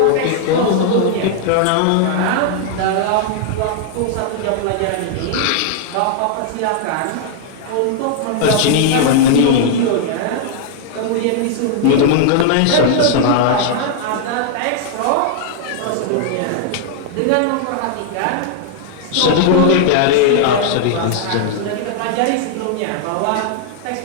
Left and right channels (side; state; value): both; different; correlation -0.01